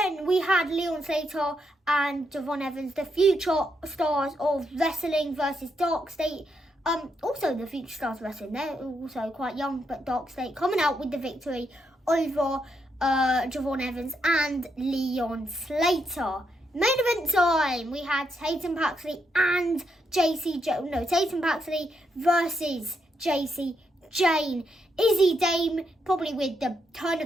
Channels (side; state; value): both; normal; correlation 0.80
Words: we had Leon Slater and Javon Evans, the future stars of wrestling versus Dark State. Also the future stars of wrestling. They're also quite young, but Dark State coming out with the victory over Javon Evans and Leon Slater. Main event time. We had Tatum Paxley and Tatum Paxley versus JC Jane. Izzy Dame, probably with the turn